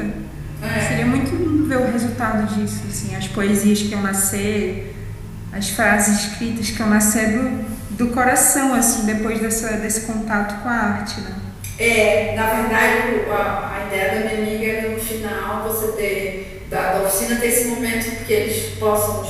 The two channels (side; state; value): both; identical; correlation 1.00